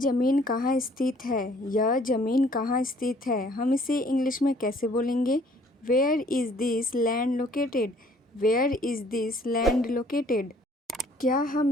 कहाँ स्थित है? यह ज़मीन कहाँ स्थित है? हम इसे इंग्लिश में कैसे बोलेंगे? Where is this land located? Where is this land located? क्या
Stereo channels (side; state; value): both; normal; correlation 0.59